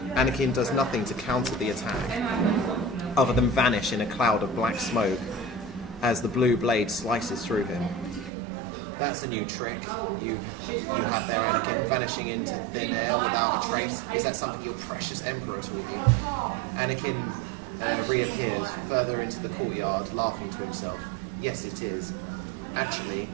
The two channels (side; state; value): left; drops out; at 8.3 s